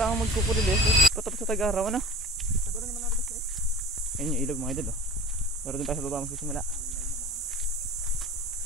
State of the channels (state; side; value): normal; both; correlation 0.41